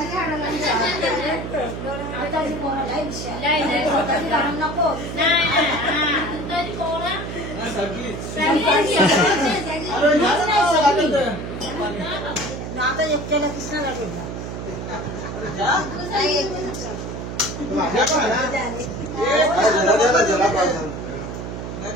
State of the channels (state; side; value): noise; right; hum, 7 dB below the sound